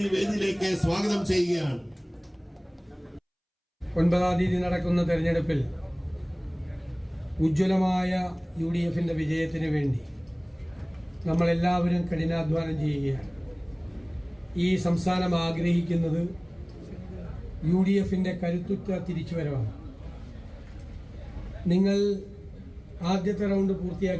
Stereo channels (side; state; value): both; identical; correlation 1.00